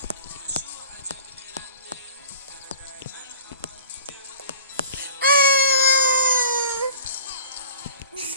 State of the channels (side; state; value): both; inverted; correlation -0.46